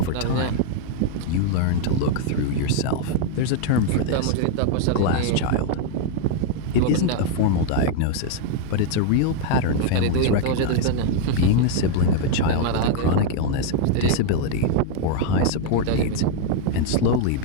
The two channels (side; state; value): both; different; correlation 0.00